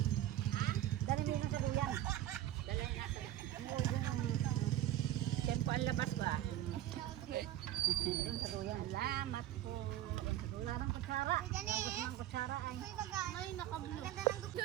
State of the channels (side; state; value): left; quieter; 13.0 dB